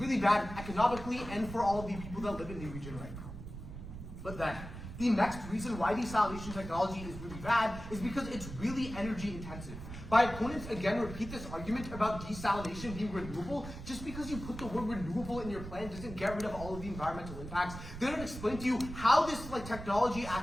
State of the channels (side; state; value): right; noise; rumble, 10 dB below the sound